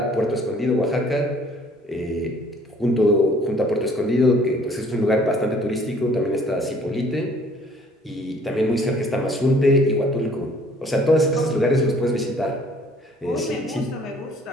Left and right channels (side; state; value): both; normal; correlation 0.57